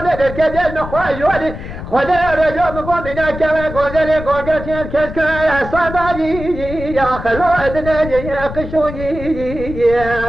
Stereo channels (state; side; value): noise; left; rumble, 10 dB below the sound